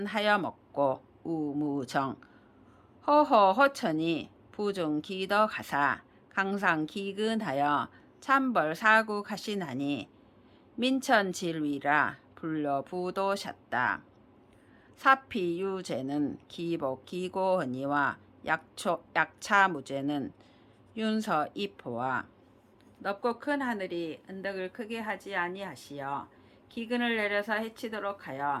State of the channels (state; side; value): identical; both; correlation 1.00